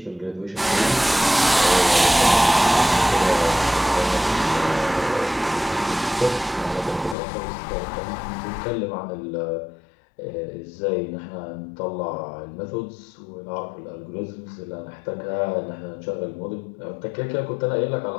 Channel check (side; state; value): right; drops out; at 7.2 s